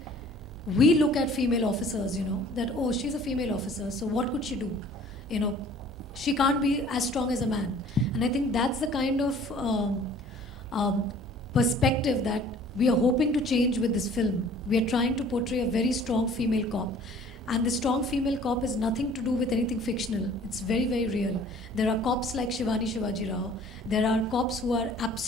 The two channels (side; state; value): both; normal; correlation 0.52